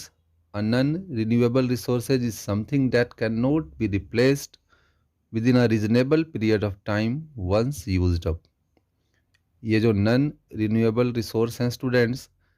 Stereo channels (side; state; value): both; identical; correlation 1.00